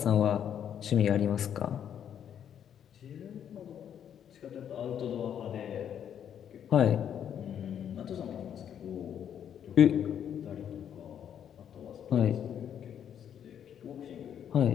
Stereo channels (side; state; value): right; quieter; 9.1 dB